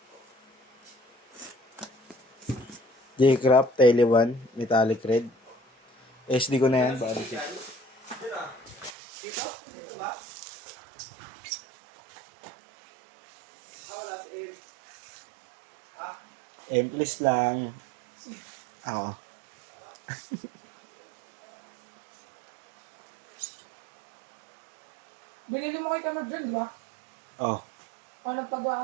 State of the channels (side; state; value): left; drops out; at 8.9 s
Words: J-Craft, Tele 1, Metallic Red. SD ko na yan, body kit. Dito? Dito ba? Wala si El. Emplis lang. Ako. Binili mo kay Kamar dyan, di ba? Oh, Paano pagawa